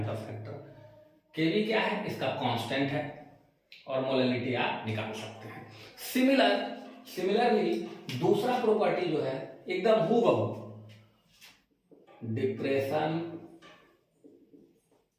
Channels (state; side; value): identical; both; correlation 1.00